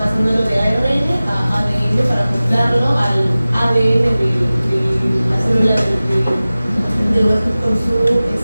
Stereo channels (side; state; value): both; inverted; correlation -0.97